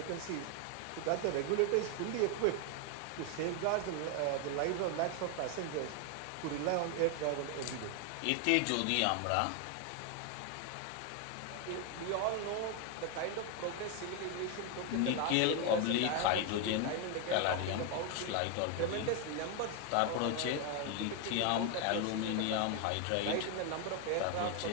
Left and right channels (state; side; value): different; both; correlation 0.01